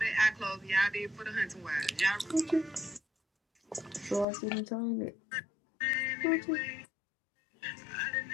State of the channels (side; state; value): right; drops out; at 4.2 s